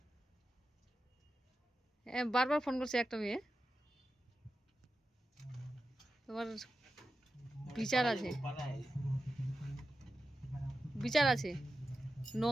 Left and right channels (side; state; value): both; normal; correlation 0.92